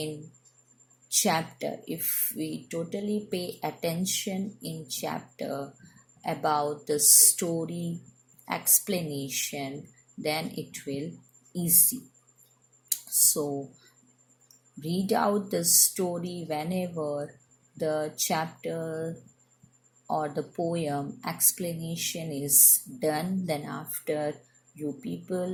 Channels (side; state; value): both; identical; correlation 1.00